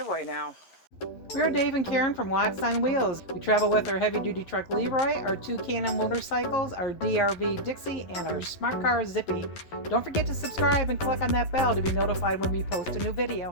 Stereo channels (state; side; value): late; right; 11 ms